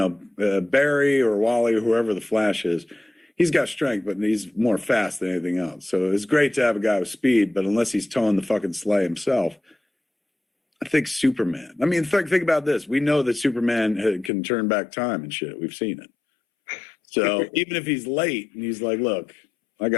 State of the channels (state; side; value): drops out; right; at 14.3 s